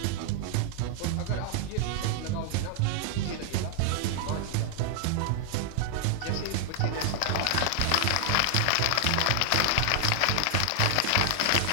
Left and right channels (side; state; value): both; different; correlation 0.00